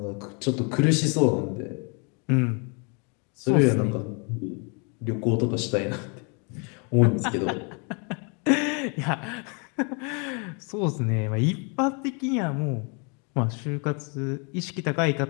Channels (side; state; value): right; quieter; 35.3 dB